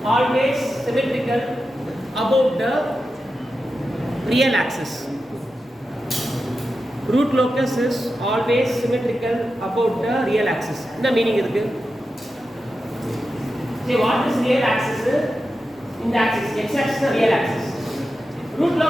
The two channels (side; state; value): both; normal; correlation 0.90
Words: always symmetrical above the real axis. root locus is always symmetrical about the real axis. என்ன meaning இருக்கு? See what is real axis? In the axis, x axis is real axis. Root